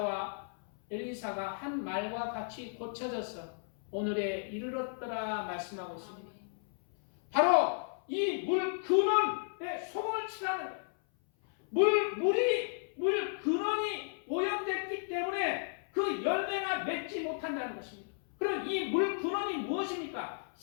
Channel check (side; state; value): right; silent; 55 dB below the other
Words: 엘리사가 한 말과 같이 고쳐져서 오늘에 이르렀더라 말씀하고 있습니다. 바로 이 물 근원에 소금을 치라는 거예요. 물 근원이 오염됐기 때문에 그 열매가 맺지 못한다는 것입니다. 그럼 이 물 근원이 무엇입니까?